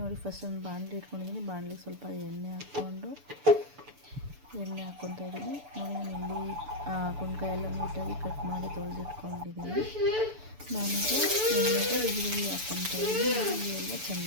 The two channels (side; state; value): left; late; 6.9 ms